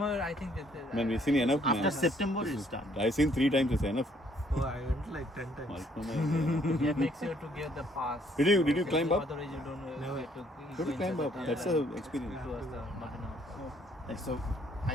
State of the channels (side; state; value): both; normal; correlation 0.65